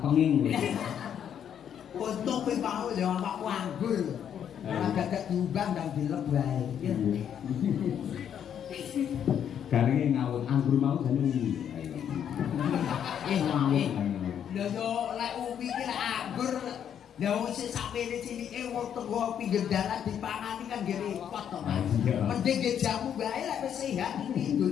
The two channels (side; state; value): right; quieter; 9.0 dB